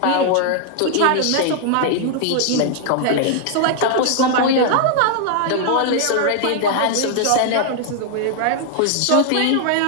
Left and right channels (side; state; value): both; different; correlation 0.00